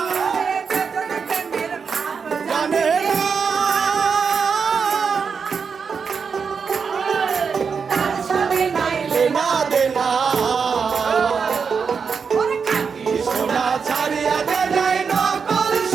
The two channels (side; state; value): left; quieter; 5.8 dB